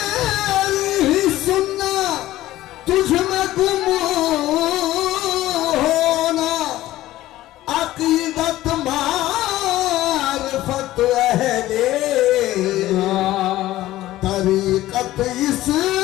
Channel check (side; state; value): right; quieter; 15.5 dB